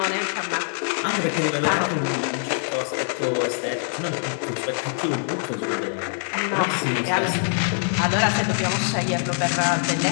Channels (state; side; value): silent; right; 59 dB below the other